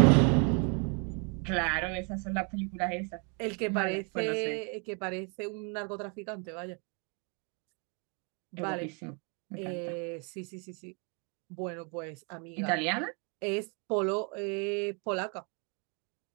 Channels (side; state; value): left; quieter; 35.9 dB